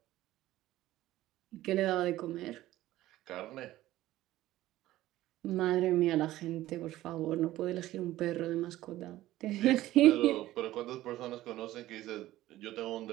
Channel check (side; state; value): left; quieter; 15.4 dB